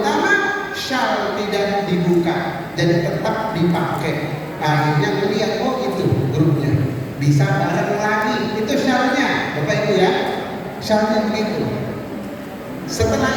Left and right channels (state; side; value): identical; both; correlation 1.00